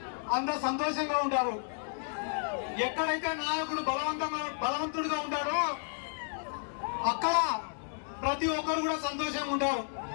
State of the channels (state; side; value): silent; right; 56 dB below the other